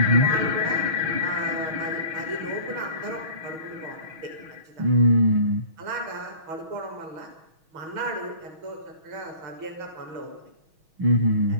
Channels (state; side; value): late; left; 6.3 ms